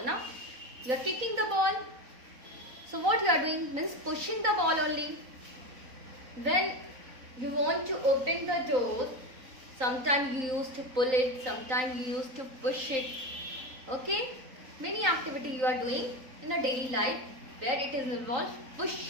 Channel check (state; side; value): late; left; 3.8 ms